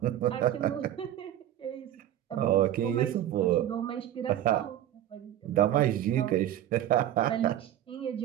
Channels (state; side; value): quieter; left; 12.0 dB